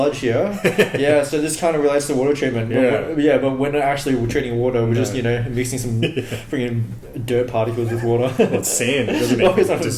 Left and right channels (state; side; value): identical; both; correlation 1.00